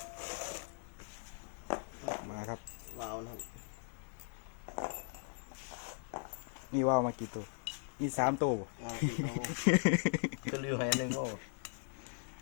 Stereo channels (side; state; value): right; silent; digital silence